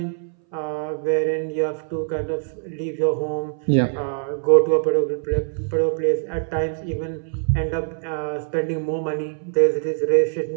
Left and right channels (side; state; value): left; silent; 61 dB below the other